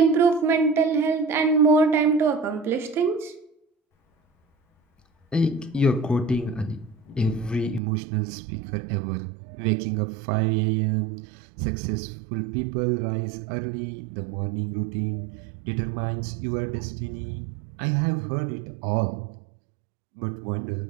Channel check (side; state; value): left; drops out; at 7.8 s